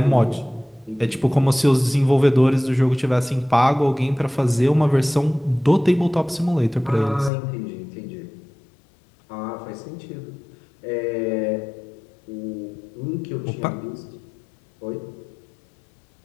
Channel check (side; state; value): right; drops out; at 7.3 s